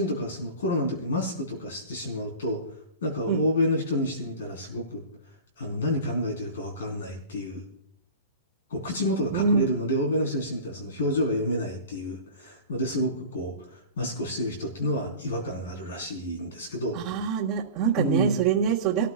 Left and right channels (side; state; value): both; inverted; correlation -0.35